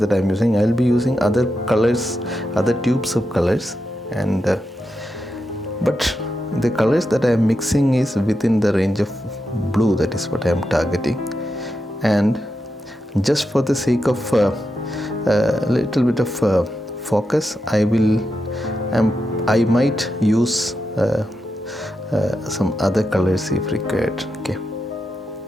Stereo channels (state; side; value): normal; both; correlation 0.87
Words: I am using. I will be using other colors, other tubes of colors, and but the colors that I am mixing is within the range of blue. That is what I am targeting, and just for the sake of a little bit of focus, I might use some other colors if required. Okay,